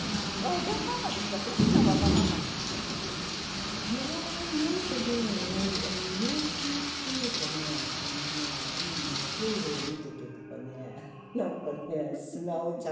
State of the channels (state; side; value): identical; both; correlation 1.00